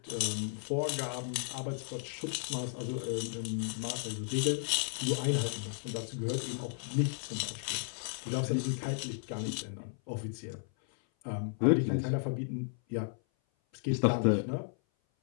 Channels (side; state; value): right; silent; 55 dB below the other